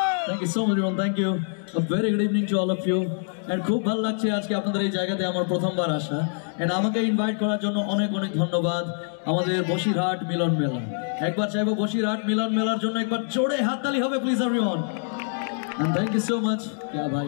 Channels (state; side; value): silent; right; digital silence